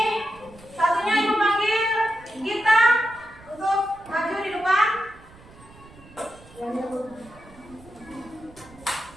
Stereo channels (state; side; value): noise; right; rumble, 23 dB below the sound